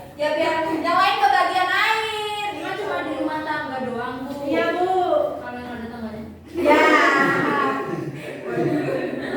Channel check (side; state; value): both; identical; correlation 1.00